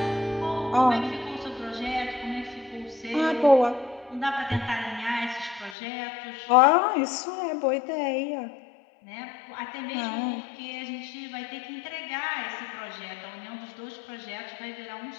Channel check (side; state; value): right; drops out; at 5.8 s